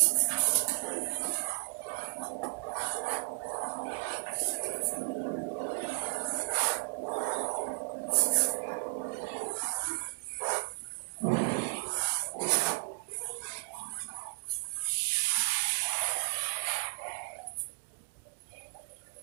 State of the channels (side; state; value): left; silent; digital silence